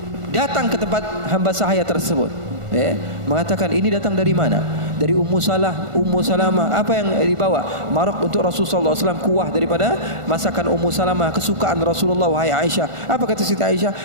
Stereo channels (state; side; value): late; left; 1.5 ms